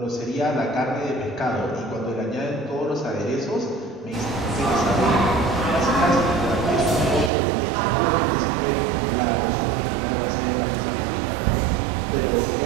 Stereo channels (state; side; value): drops out; left; at 7.3 s